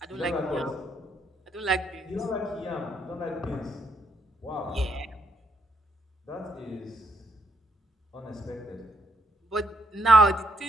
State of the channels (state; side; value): normal; both; correlation 0.75